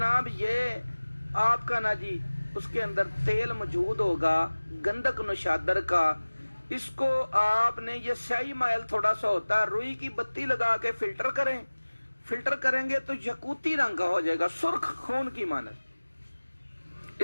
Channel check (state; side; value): inverted; both; correlation -1.00